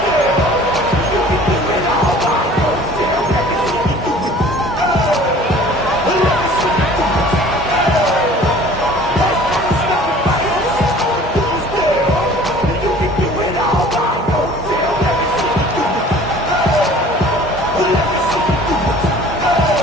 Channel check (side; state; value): both; normal; correlation 0.48